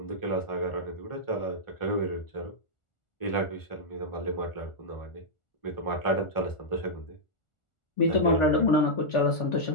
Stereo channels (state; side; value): late; right; 1.4 ms